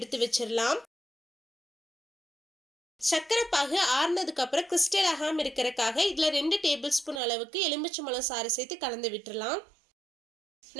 வச்சிடலாம். சர்க்கரை பாகு ஆறுனதுக்கு அப்புறம் கிறிஸ்டல் ஆகாம இருக்கிறதுக்காக இதுல 2 டேபிள் ஸ்பூன் அளவுக்கு எலுமிச்சம்பழம் சாறு சேர்த்து கலந்து விட்டுறலாம்.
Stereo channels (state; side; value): drops out; left; at 7.2 s